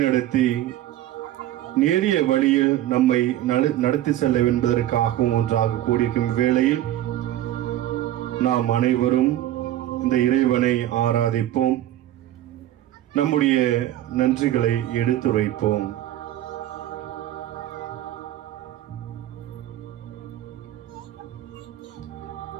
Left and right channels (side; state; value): left; quieter; 13.4 dB